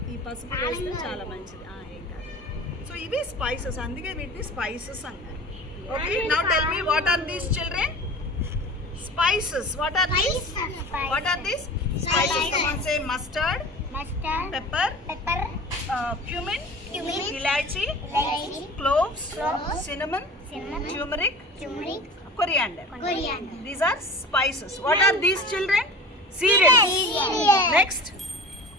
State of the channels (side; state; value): both; normal; correlation 0.38